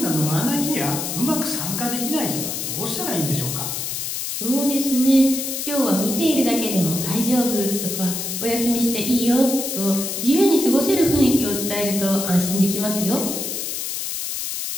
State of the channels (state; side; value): noise; left; hiss, 4 dB below the sound